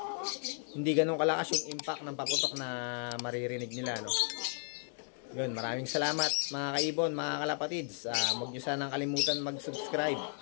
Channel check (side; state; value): right; silent; 55 dB below the other